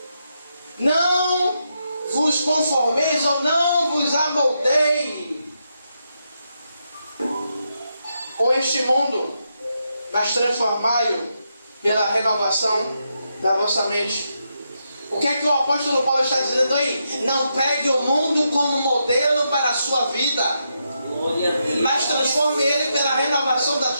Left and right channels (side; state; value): both; inverted; correlation -0.82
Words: não vos conformeis ou não vos amoldeis com este mundo, mas transformai-o pela renovação da vossa mente. O que é que o apóstolo Paulo está dizendo aí? Não pegue o mundo como modelo para a sua vida, mas transforme ele pela renovação da